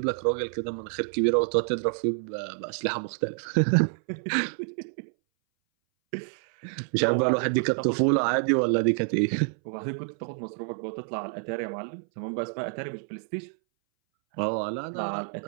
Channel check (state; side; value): silent; left; 60 dB below the other